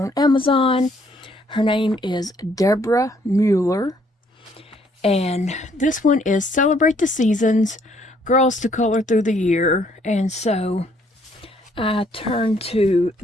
Amazon. Her name is Deborah Mueller. And this one is Celebrate the Seasons, Girls to Color Through the Year. And so I turned to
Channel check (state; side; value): normal; both; correlation 0.66